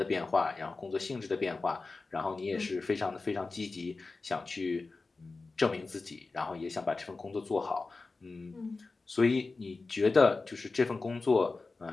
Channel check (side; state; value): right; quieter; 3.8 dB